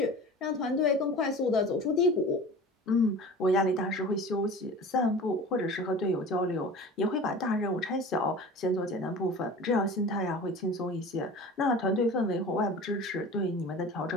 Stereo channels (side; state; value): both; normal; correlation 0.38